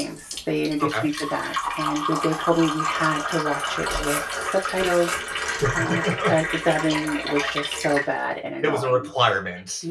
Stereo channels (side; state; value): both; identical; correlation 1.00